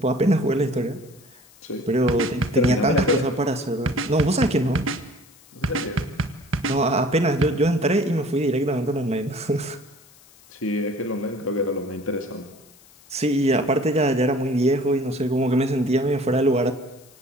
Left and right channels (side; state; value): left; noise; hiss, 26 dB below the sound